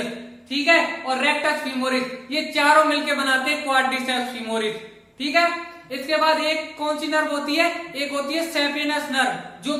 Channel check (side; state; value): both; identical; correlation 1.00